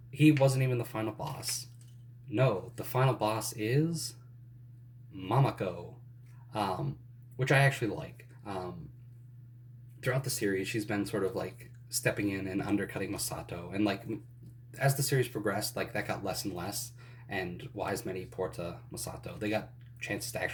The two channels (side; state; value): both; identical; correlation 1.00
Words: He wasn't even the final boss. No, the final boss is Mamako, um, which I actually like. Throughout the series, she's been sort of like stepping in and undercutting Masato, and like as the series progressed, like that got less and less. And Wise Many, Porta, Masato, they got chances to